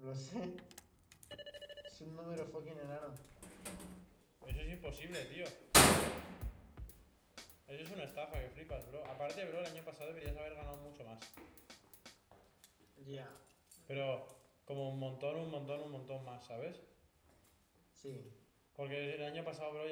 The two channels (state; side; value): identical; both; correlation 1.00